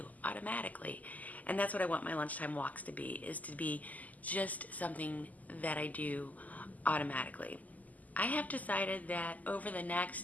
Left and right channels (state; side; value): late; right; 0.078 ms